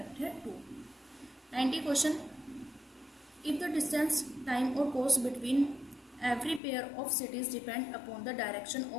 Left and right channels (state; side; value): drops out; right; at 6.6 s